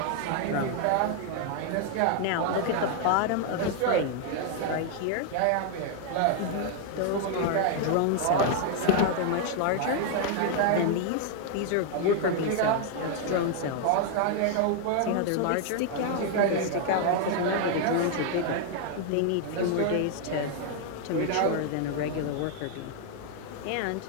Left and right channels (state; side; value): different; both; correlation 0.00